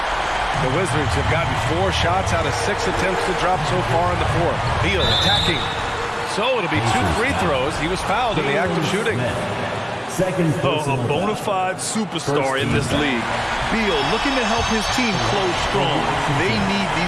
The Wizards have gotten 4 shots out of 6 attempts to drop so far in the 4th. Beal attacking. So it'll be 2 free throws. He was fouled in the act of shooting. A bona fide superstar in this league. Beal looking to help his team close strong. They need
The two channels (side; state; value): both; identical; correlation 1.00